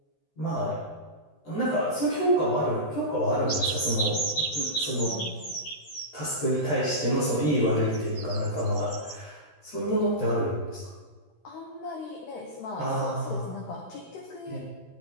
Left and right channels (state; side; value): late; right; 13 ms